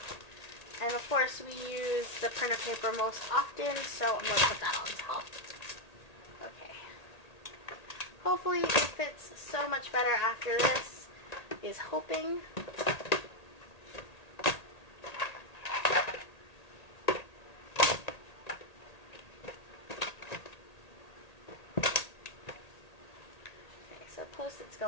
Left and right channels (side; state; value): right; late; 1.8 ms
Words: And of course we use the printer paper most often, so I'm going to put that on top. Okay. Hopefully it fits so much better after this, is hoping. Post-its